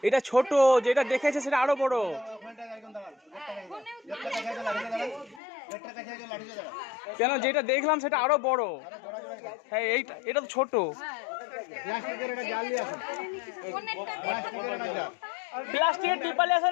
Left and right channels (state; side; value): drops out; right; at 5.4 s